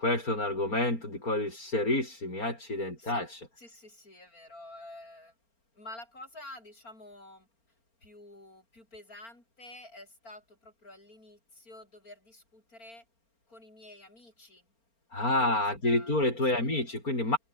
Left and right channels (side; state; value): right; late; 4.4 ms